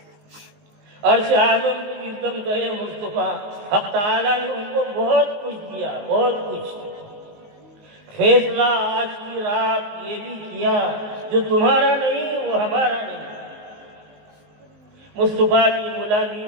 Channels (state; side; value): late; left; 19 ms